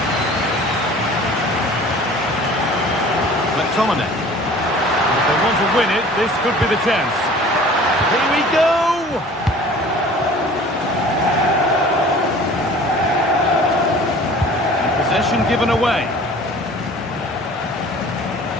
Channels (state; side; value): normal; both; correlation 0.46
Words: McTominay. If they want to win it, this could be the chance. Here we go! And possession given away.